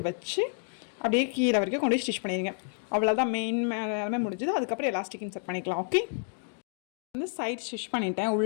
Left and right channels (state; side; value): silent; right; 58 dB below the other